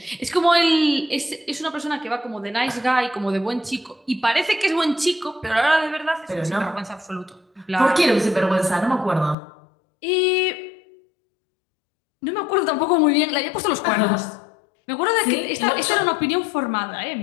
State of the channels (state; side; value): drops out; right; at 9.3 s